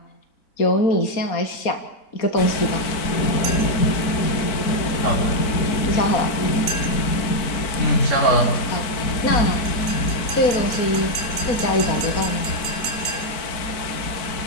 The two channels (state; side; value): late; right; 4.5 ms